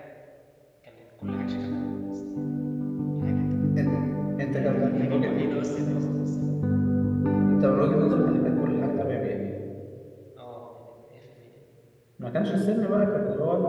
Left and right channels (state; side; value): identical; both; correlation 1.00